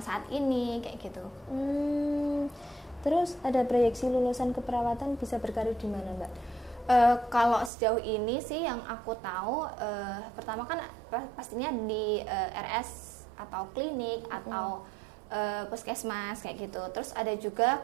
saat ini kayak gitu. Terus ada proyeksi lulusan keperawatan bisa berkarir di mana Mbak? Kalau sejauh ini sih yang aku tahu, pertama kan pastinya di RS atau klinik atau puskesmas kayak gitu. Terus ada juga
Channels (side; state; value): left; drops out; at 7.7 s